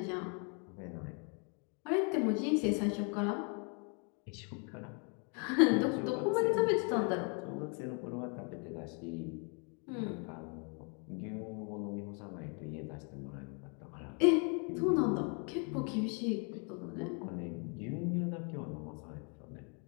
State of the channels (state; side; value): quieter; right; 37.2 dB